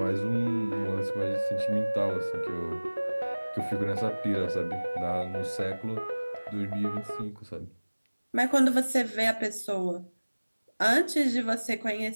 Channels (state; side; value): inverted; both; correlation -1.00